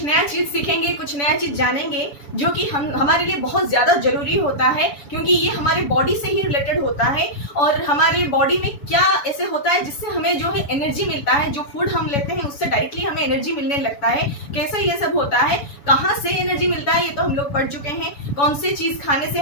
नया चीज सीखेंगे, कुछ नया चीज जानेंगे जो कि हम हमारे लिए बहुत ज्यादा जरूरी होता है, क्योंकि ये हमारे बॉडी से ही रिलेटेड होता है। और हमारे बॉडी में क्या ऐसे होता है जिससे हमें जो है एनर्जी मिलता है, जो फूड हम लेते हैं उससे डायरेक्टली हमें एनर्जी मिलने लगता है। कैसे ये सब होता है, कहाँ से एनर्जी मिलता है, ये तो हम लोग पढ़ चुके हैं। कौन सी चीज खाने से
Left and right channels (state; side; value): late; right; 7.0 ms